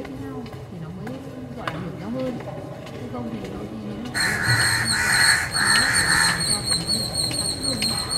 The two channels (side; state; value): both; identical; correlation 1.00